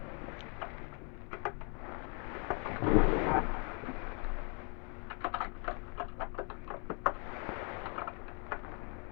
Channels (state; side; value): quieter; right; 37.9 dB